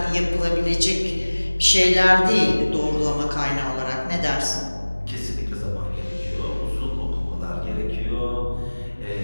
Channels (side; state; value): both; inverted; correlation -1.00